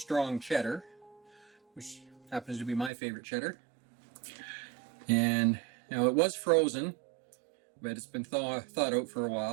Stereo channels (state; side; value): drops out; left; at 2.9 s